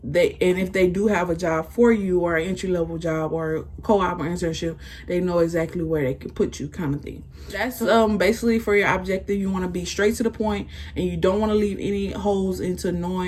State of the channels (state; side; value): identical; both; correlation 1.00